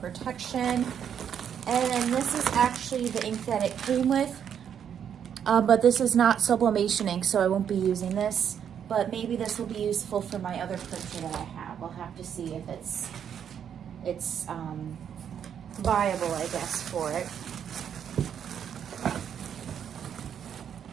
And this is actually the ink that it came with, but this is not sublimation ink, so I won't be using this. But maybe this will be useful for my other printer that I have. We'll have to see if it's viable, I guess, for it.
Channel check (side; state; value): left; quieter; 8.5 dB